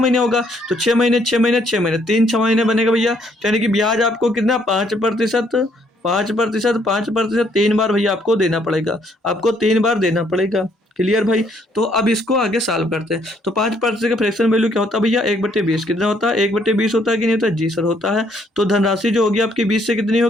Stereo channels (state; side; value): normal; both; correlation 0.68